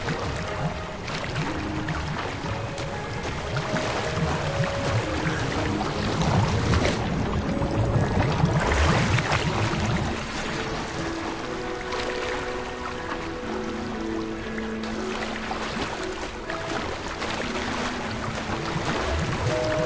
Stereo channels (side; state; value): both; identical; correlation 1.00